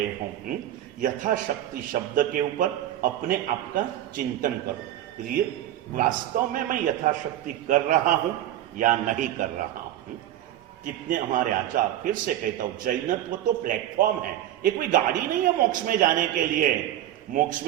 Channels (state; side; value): quieter; left; 12.7 dB